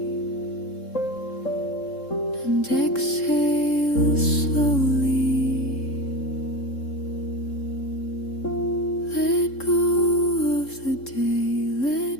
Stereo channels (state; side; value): late; right; 3.7 ms